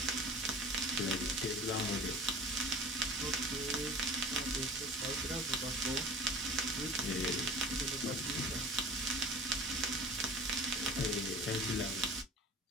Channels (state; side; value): normal; both; correlation 0.40